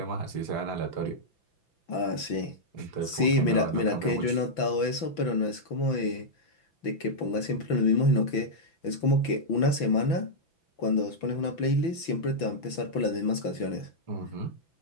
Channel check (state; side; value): late; right; 6.0 ms